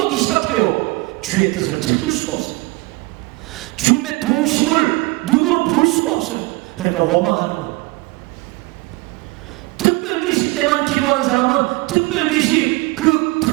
시작해요. 주의 뜻을 찾을 수가 없어요. 주님의 도우심을 눈으로 볼 수가 없어요. 그러니까 원망하는 거예요. 특별계시 때만 기도하는 사람은 특별계시 그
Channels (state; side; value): quieter; left; 23.0 dB